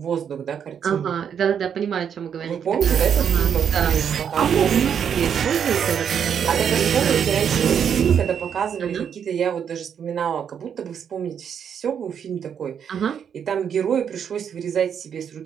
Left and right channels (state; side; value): quieter; left; 8.0 dB